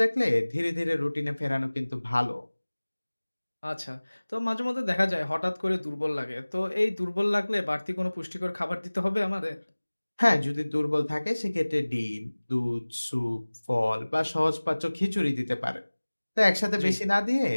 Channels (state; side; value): inverted; both; correlation -1.00